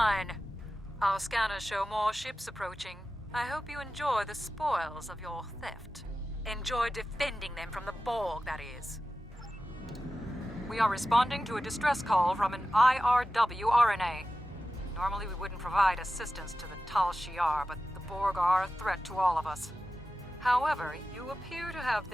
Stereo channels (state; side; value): normal; both; correlation 0.94